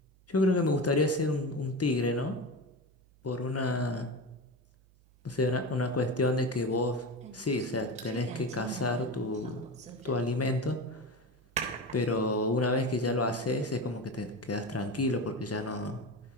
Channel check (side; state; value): right; noise; hum, 29 dB below the sound